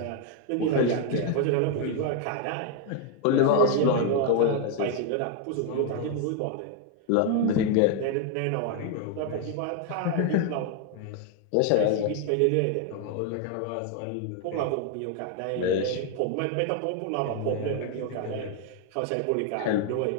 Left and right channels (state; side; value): different; both; correlation 0.00